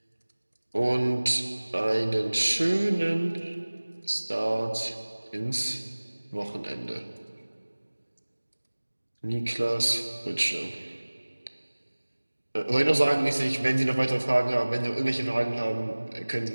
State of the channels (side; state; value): both; inverted; correlation -1.00